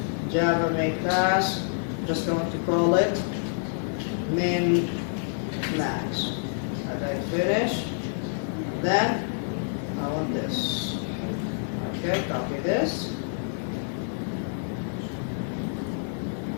Java main class, just going to call it min max. Okay, finish. Then I want this. Okay, copy this.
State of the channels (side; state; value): right; silent; digital silence